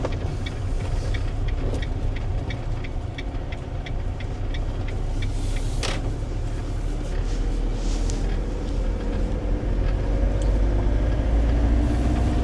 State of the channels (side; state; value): both; identical; correlation 1.00